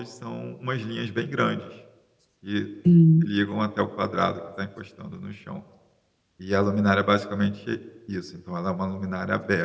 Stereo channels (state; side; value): identical; both; correlation 1.00